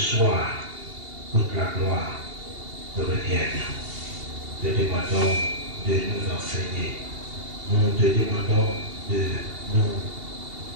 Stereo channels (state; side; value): late; left; 2.8 ms